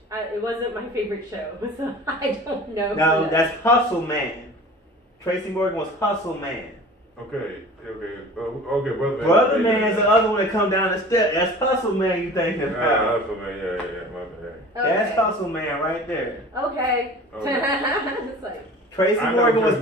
It wasn't my favorite show, so I don't know. No, who that's Hustle Man. Tracy Morgan was Hustle Man. Okay, okay, brother man. Brother Man's the other one that come down the step. That's Hustle Man you thinking about. Hustle man, yeah, my bad. Okay. That's Hustle Man right there. Okay. Okay. It's like, Tracy I know Morgan was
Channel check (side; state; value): both; normal; correlation 0.41